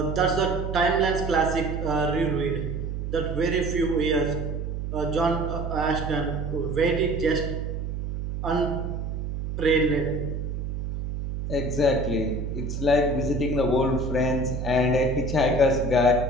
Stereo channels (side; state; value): right; noise; hum, 4 dB below the sound